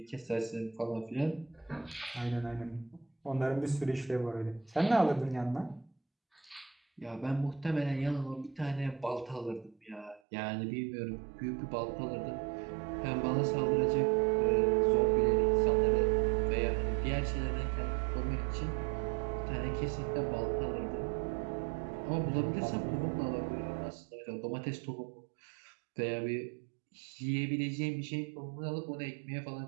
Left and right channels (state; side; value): drops out; left; at 10.2 s